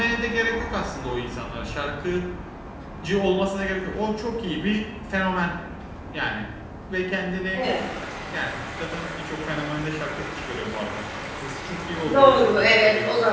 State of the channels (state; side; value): identical; both; correlation 1.00